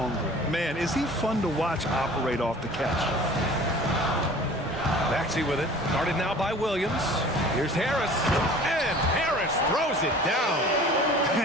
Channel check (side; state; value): both; normal; correlation 0.45